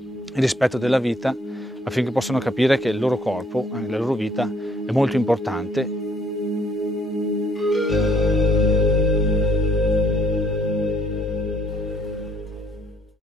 il rispetto della vita, affinché possano capire che il loro corpo, la loro vita, è molto importante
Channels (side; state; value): both; normal; correlation 0.64